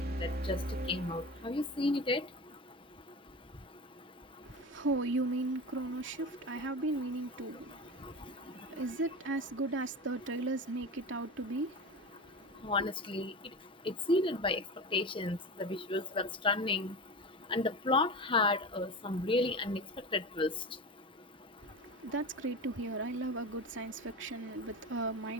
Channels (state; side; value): normal; both; correlation 0.27